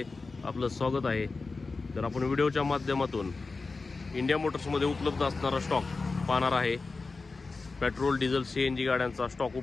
आपलं स्वागत आहे। तर आपण व्हिडिओच्या माध्यमातून इंडिया मोटर्समध्ये उपलब्ध असणारा स्टॉक पाहणार आहे। पेट्रोल, डिझेल, सीएनजी गाड्यांचा स्टॉक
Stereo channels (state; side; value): quieter; right; 3.9 dB